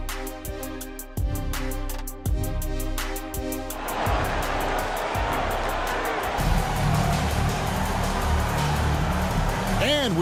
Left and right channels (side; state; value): both; identical; correlation 1.00